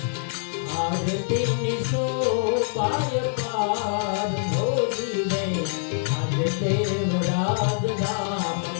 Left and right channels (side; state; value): right; silent; 62 dB below the other